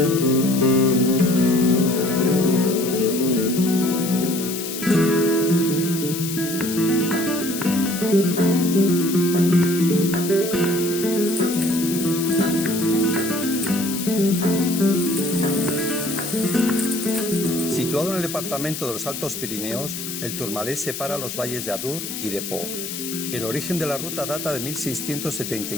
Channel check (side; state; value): left; noise; hiss, 7 dB below the sound